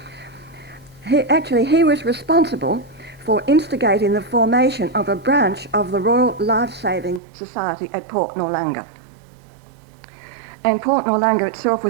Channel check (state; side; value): drops out; left; at 7.2 s